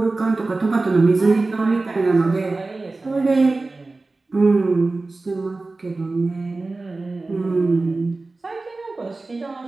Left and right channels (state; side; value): quieter; left; 3.4 dB